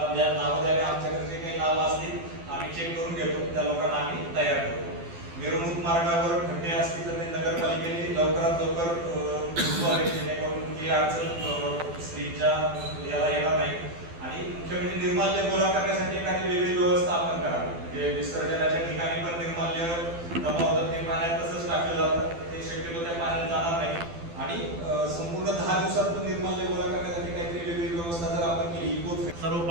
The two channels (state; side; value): late; left; 12 ms